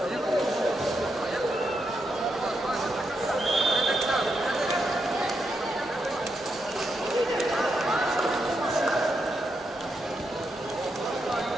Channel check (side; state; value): both; normal; correlation 0.83